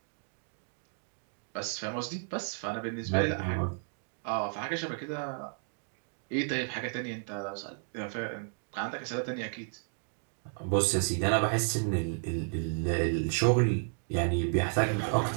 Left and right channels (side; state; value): left; silent; 56 dB below the other